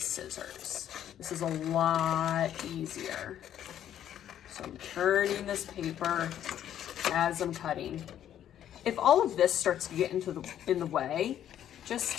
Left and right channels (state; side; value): quieter; right; 10.7 dB